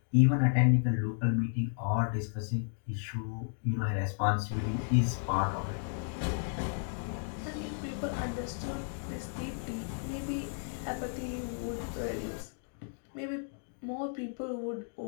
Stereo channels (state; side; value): silent; right; digital silence